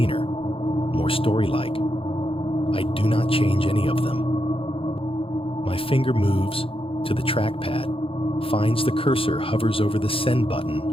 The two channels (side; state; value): right; late; 0.27 ms